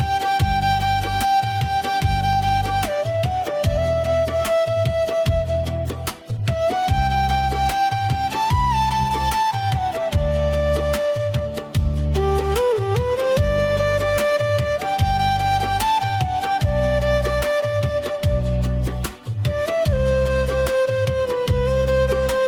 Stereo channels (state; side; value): identical; both; correlation 1.00